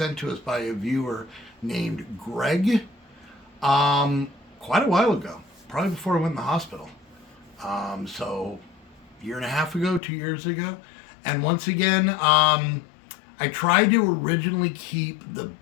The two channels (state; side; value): drops out; right; at 10.0 s